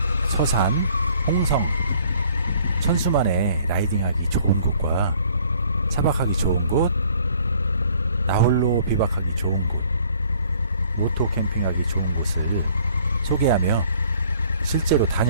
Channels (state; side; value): inverted; both; correlation -0.58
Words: 서산, 홍성, 천수만에 라이딩하기 좋은 곳과 차박하기 좋은 곳, 나홀로 비박하기 좋은 곳, 오토 캠핑하기 좋은 곳을 소개하며 실제로